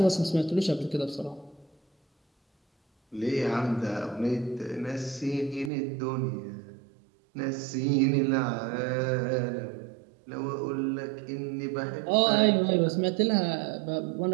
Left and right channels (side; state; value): left; drops out; at 5.7 s